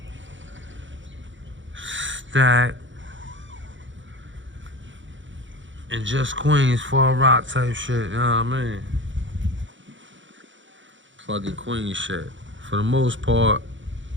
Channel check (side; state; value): left; late; 0.55 ms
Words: Stack, and just Queens, Fall Rock type shit. You know what I mean? Plugging Queen shit. For the most part,